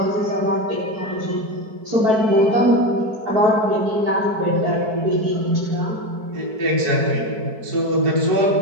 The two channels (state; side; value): late; left; 4.6 ms